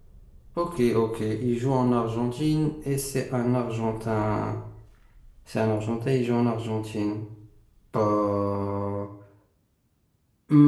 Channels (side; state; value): both; identical; correlation 1.00